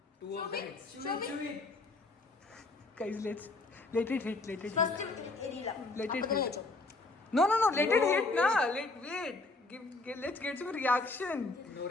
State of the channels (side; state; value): right; quieter; 3.2 dB